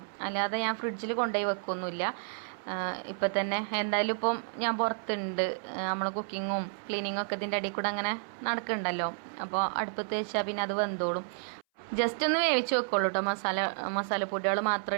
അല്ലാതെ ഞാൻ ഫ്രിഡ്ജിൽ കൊണ്ടുപോയി വെക്കൊന്നുമില്ല. ഇപ്പം തന്നെ എന്തായാലും ഇപ്പം ഞാൻ പുറത്തുണ്ട്, നമ്മൾ കുക്കിങ്ങും ക്ലീനിങ്ങും ഒക്കെ ഇതിൻ്റെ ഇടയിൽ കൂടെ അങ്ങനെ നടക്കുന്നുണ്ടല്ലോ. അപ്പോൾ അടുപ്പത്ത് വെച്ചാൽ പിന്നെ അത് വെന്തോളും. ജസ്റ്റ് ഒന്ന് വേവിച്ച് വെക്കുള്ളൂ കേട്ടോ, മസാലപ്പൊടികൾ മാത്രം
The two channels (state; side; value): silent; left; 57 dB below the other